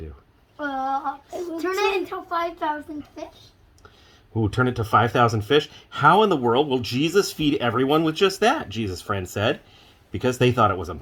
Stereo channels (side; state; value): both; identical; correlation 1.00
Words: do? Turn it into 5,000 fish. Ooh, turn it to 5,000 fish? How in the world will Jesus feed everyone with just that? Jesus' friend said, because they thought it was